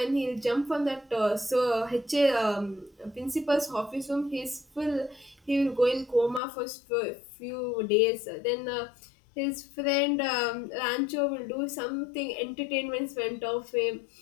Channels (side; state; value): right; drops out; at 6.4 s